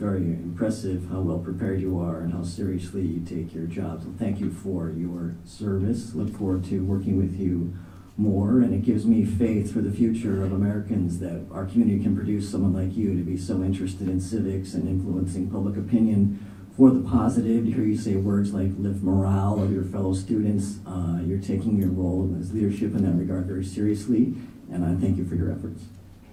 impressive how well prepared you are and how seriously you take your job. So thank you for your service. Look forward to working with you more, and it gives me faith for the future of Americans that our community can produce someone like you to be so interested in civics and influencing public opinion for the positive. To hear you say words like lift morale of your fellow students, you're taking your role as leadership in that regard very seriously, and I thank you for your efforts.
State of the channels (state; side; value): identical; both; correlation 1.00